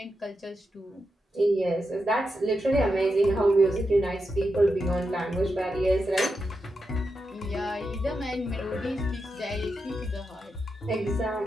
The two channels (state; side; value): normal; both; correlation 0.87